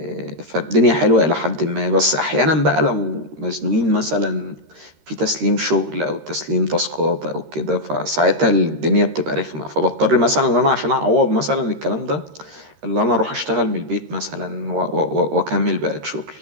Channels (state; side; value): late; left; 13 ms